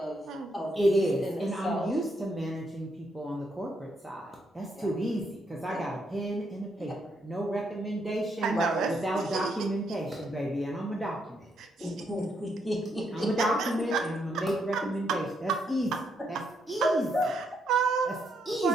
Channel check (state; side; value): normal; both; correlation 0.77